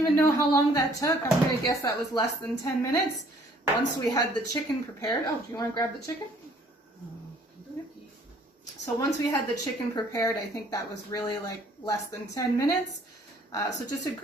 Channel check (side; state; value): both; normal; correlation 0.59